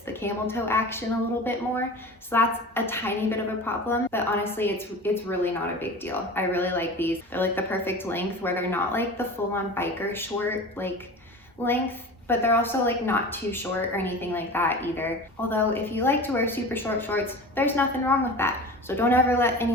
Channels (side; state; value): both; normal; correlation 0.35